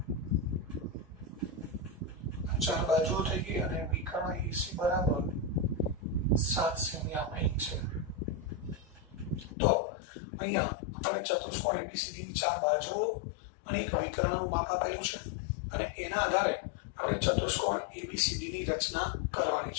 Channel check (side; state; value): right; drops out; at 9.6 s